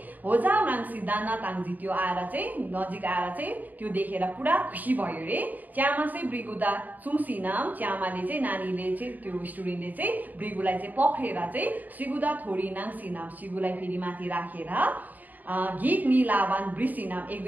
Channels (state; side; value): late; left; 0.083 ms